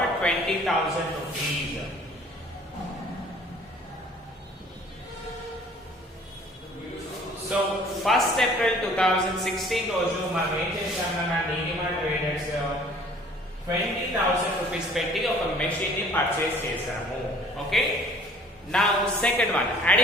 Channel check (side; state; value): both; normal; correlation 0.53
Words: 20,000 rupees. So 1st April 2016 రోజు మనం ఏం చేశామన్నా నీలిమా ట్రేడర్స్ 20,000 రూపీస్ పెట్టి ఒక మెషిన్ ని పర్చేస్ చేశాము. Okay. Now second one,